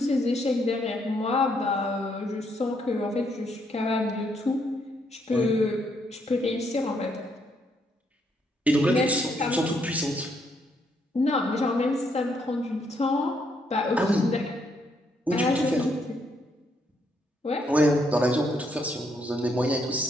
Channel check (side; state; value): both; normal; correlation 0.73